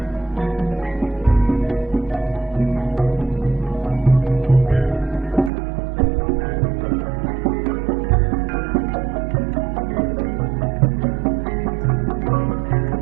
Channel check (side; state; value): left; drops out; at 5.5 s